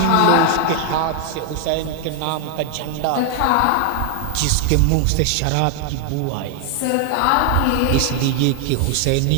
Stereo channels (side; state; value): both; different; correlation 0.00